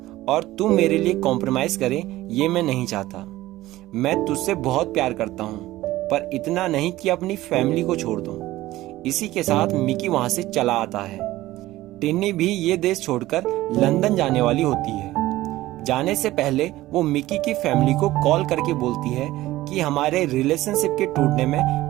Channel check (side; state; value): left; quieter; 16.6 dB